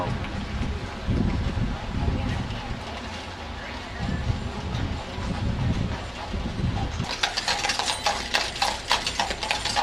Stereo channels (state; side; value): identical; both; correlation 1.00